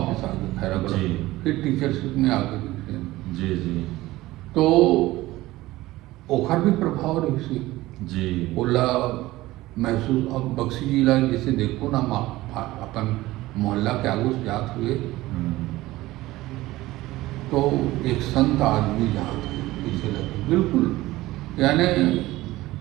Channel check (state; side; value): quieter; left; 17.8 dB